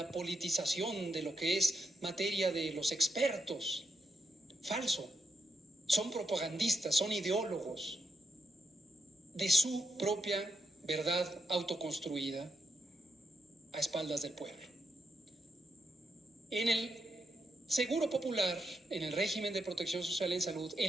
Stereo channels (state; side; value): normal; both; correlation 0.82